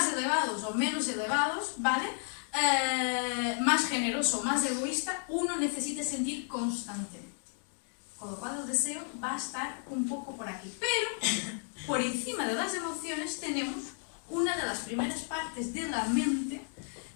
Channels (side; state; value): right; silent; 56 dB below the other